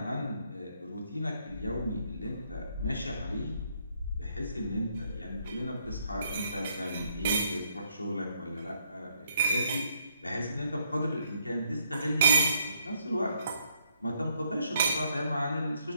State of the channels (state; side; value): inverted; both; correlation -0.72